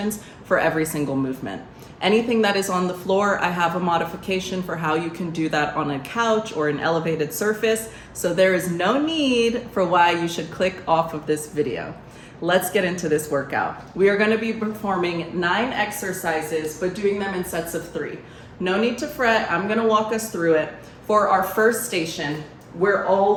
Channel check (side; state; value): both; identical; correlation 1.00